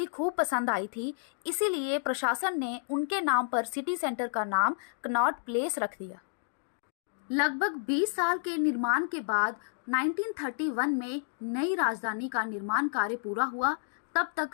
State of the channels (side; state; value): right; silent; digital silence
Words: खूब पसंद आई थी, इसीलिए प्रशासन ने उनके नाम पर सिटी सेंटर का नाम कनॉट प्लेस रख दिया। लगभग 20 साल के निर्माण के बाद 1931 में नई राजधानी का निर्माण कार्य पूरा हुआ। तब